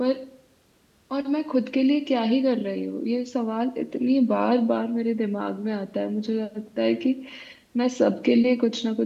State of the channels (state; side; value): identical; both; correlation 1.00